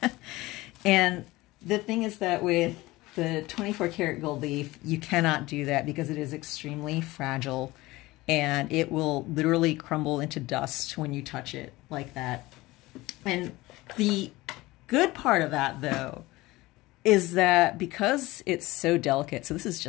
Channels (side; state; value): right; quieter; 19.7 dB